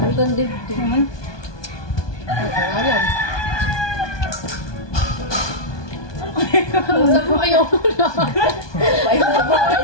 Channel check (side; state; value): right; late; 1.2 ms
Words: ganda dito. Naman. Alam. Saan mo ayaw mo lang?